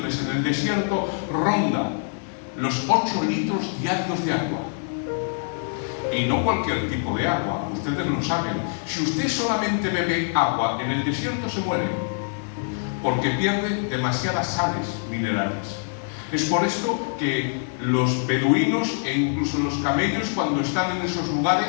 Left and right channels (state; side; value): silent; right; 61 dB below the other